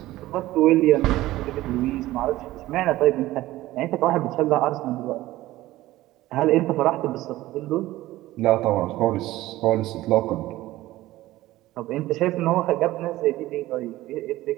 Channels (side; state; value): left; quieter; 16.6 dB